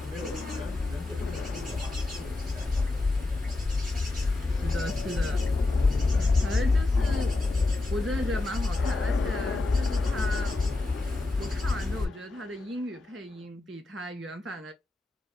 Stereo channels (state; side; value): quieter; right; 3.0 dB